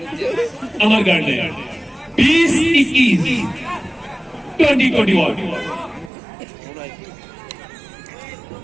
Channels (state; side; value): drops out; left; at 6.1 s